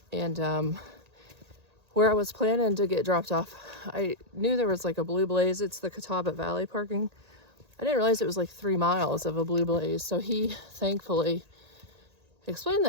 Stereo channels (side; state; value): left; late; 1.8 ms